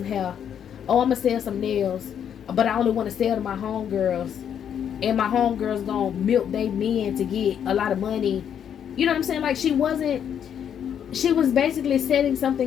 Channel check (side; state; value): right; quieter; 8.8 dB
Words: hair, oh, I'm gonna sell some nails, but I only want to sell to my homegirls, and my homegirls gonna milk they men to get a lot of money. You know what I'm saying? Like, she was basically setting